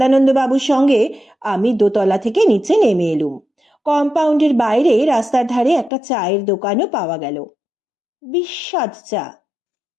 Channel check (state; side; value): drops out; right; at 5.9 s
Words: বাবুর সঙ্গে আমি দোতলা থেকে নিচে নেমে এলুম। কম্পাউন্ডের বাইরে রাস্তার ধারে একটা চায়ের দোকানও পাওয়া গেল। বিস্বাদ চা।